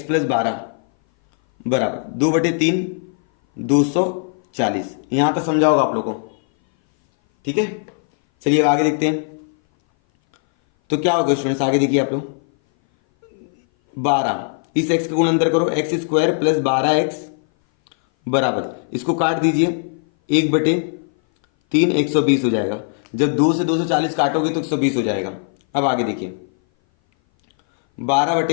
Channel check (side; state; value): right; silent; 59 dB below the other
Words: प्लस 12 बराबर 2/3 240। यहां तक समझा होगा आप लोगों को, ठीक है। चलिए अब आगे देखते हैं। तो क्या होगा स्टूडेंट्स, आगे देखिए आप लोग, 12 इस x का गुण अंदर करो, एक्स स्क्वायर प्लस 12x बराबर, इसको काट दीजिए 1/3 120 हो जाएगा। जब 2 से 240 काटोगे तो 120 हो जाएगा। अब आगे देखिए